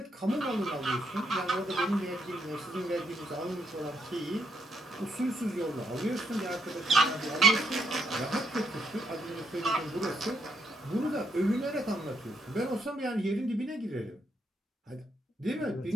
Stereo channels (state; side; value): normal; both; correlation 0.75